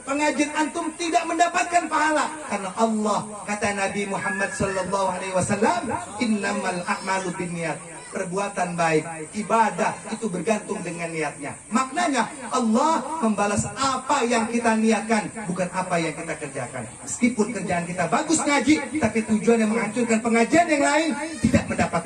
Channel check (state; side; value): identical; both; correlation 1.00